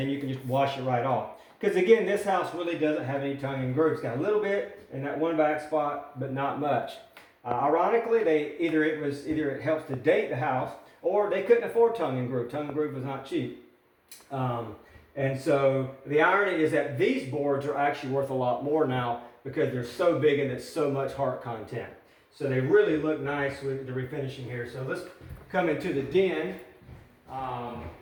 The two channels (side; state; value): both; identical; correlation 1.00